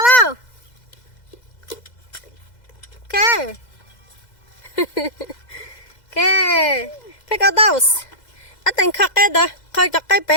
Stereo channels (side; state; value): right; late; 2.0 ms